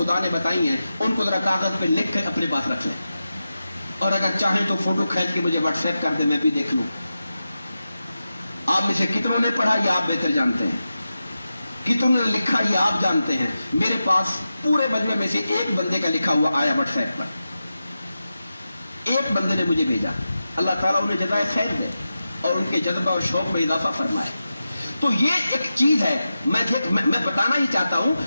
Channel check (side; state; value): both; inverted; correlation -0.92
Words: ने बताई हैं उनको जरा कागज पे लिख कर अपने पास रख लें, और अगर चाहें तो फोटो खींच के मुझे व्हाट्सएप कर दे, मैं भी देख लूं। आप में से कितनों ने पढ़ा ये आप बेहतर जानते हैं, कितनों ने लिखा ये आप जानते हैं। मेरे पास पूरे मजमे में से एक बंदे का लिखा हुआ आया व्हाट्सएप पर, एक बंदे ने मुझे भेजा, अल्लाह ताला उन्हें जज़ाए खैर दे और उनके जज्बा और शौक में इजाफा फरमाए। तो ये एक चीज है, मैं बताना ही चाहता हूं